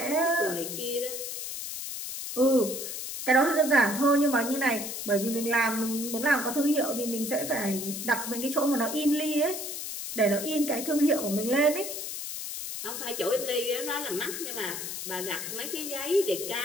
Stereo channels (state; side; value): noise; left; hiss, 6 dB below the sound